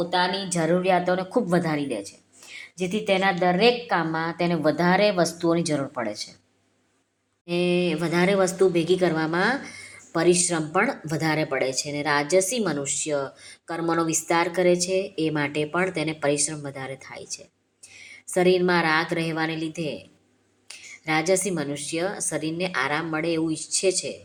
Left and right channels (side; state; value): both; identical; correlation 1.00